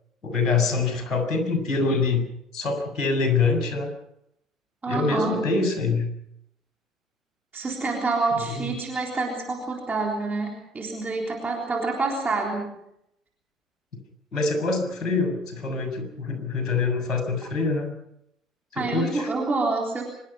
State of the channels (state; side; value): normal; both; correlation 0.47